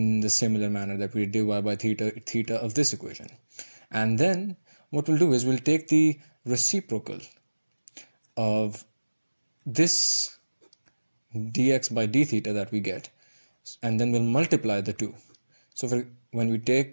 the similar manner that we did dy by theta of this equation. And then what we'll do is we'll take the reciprocal of this dx by d theta that we get, and then we'll multiply the two. So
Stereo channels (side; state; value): both; inverted; correlation -1.00